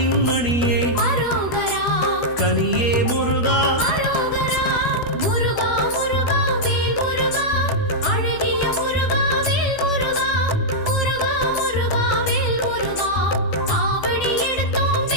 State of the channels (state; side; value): late; right; 12 ms